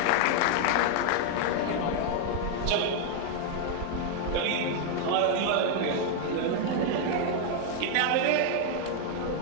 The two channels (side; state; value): both; different; correlation 0.00